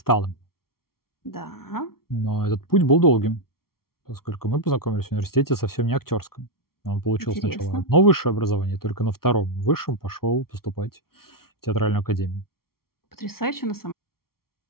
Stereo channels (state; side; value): late; right; 0.94 ms